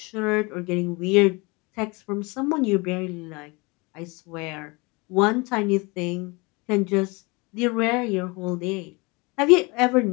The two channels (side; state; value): right; quieter; 26.8 dB